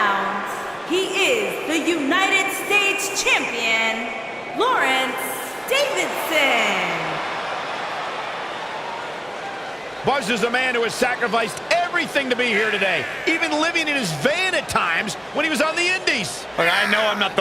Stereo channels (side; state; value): both; identical; correlation 1.00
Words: he is the United States champion, Lawrence Davidson. Buzz is a man who has sacrificed everything to be here today, even living in his van at times when he was on the Indies. Look, I know I'm not